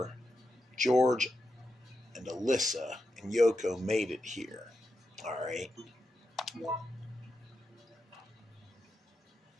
George and Alyssa and Yoko made it here. All right.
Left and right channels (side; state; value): both; normal; correlation 0.87